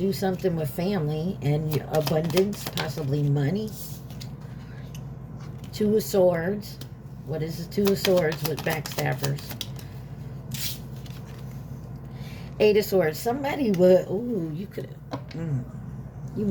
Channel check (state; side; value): identical; both; correlation 1.00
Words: something with family and abundance, possibly money. Two of Swords. What is the Two of Swords with backstabbers? Eight of Swords. Somebody would, ooh, you could, you